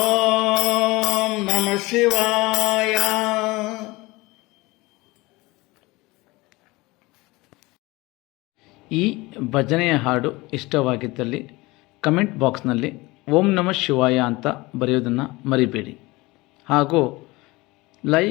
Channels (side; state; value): right; quieter; 22.1 dB